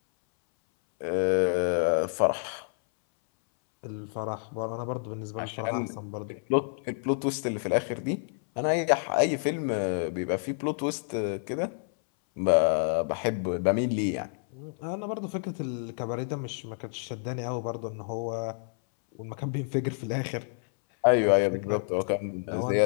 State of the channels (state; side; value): silent; right; 59 dB below the other